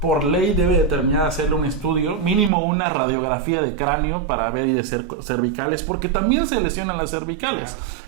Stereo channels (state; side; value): drops out; left; at 2.5 s